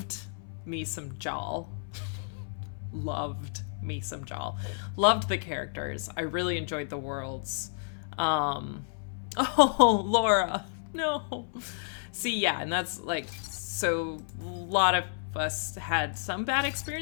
me some Jal. Loved me some Jal. Loved the characters. I really enjoyed the worlds. Oh, Laura. No. See, yeah, and that's like, so a lot of us had some bad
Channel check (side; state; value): right; silent; 57 dB below the other